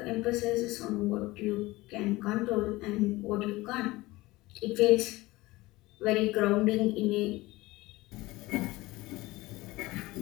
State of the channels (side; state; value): right; quieter; 20.0 dB